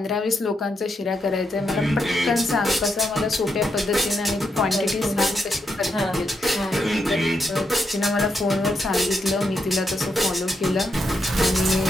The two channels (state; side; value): normal; both; correlation 0.82